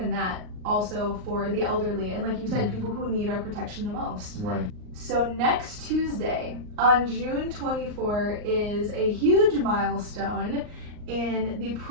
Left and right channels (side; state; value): left; late; 38 ms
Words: that, also for the elderly, and like you said, people who need our protection the most. Right. So next Tuesday, on June 24, is a huge milestone in the